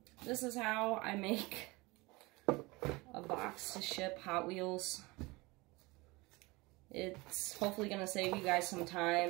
this is how I make a box to ship Hot Wheels. It's hopefully going to save you guys some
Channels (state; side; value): quieter; left; 23.5 dB